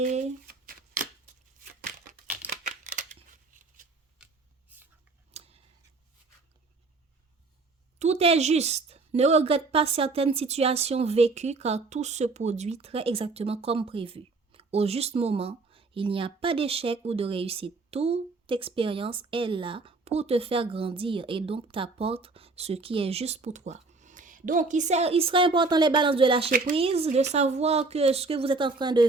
Tout est juste. Ne regrette pas certaines situations vécues car tout se produit très exactement comme prévu. Au juste moment, il n'y a pas d'échec ou de réussite. Toute expérience est là pour te faire grandir et donc t'apporte ce qui est juste pour toi. Donc, il serait important, les balances, de lâcher prise, de savoir que ce que vous êtes en train de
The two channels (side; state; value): left; quieter; 3.7 dB